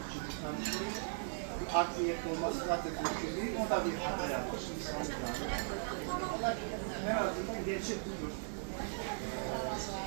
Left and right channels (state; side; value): silent; left; digital silence